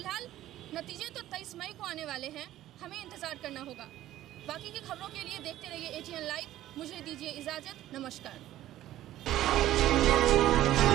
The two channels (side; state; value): left; quieter; 13.8 dB